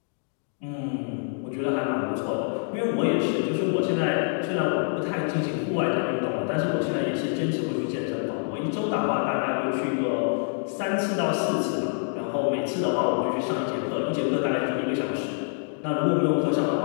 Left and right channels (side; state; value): right; silent; 61 dB below the other